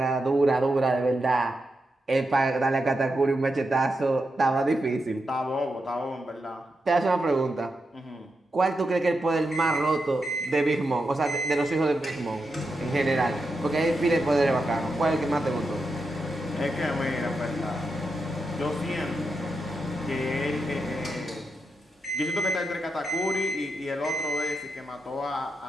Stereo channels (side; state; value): both; normal; correlation 0.86